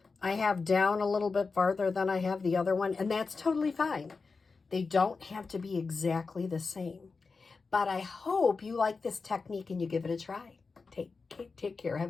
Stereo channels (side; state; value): right; quieter; 4.4 dB